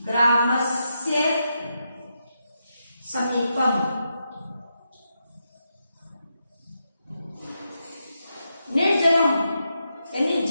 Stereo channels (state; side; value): inverted; both; correlation -0.85